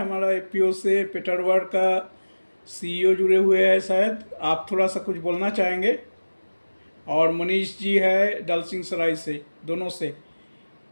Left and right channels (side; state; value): both; inverted; correlation -1.00